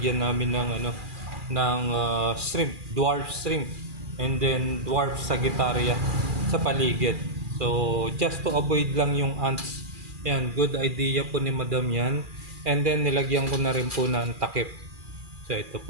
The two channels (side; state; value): left; late; 2.4 ms